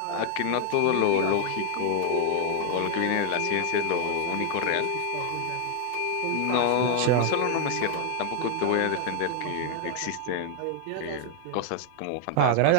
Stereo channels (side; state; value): both; different; correlation 0.00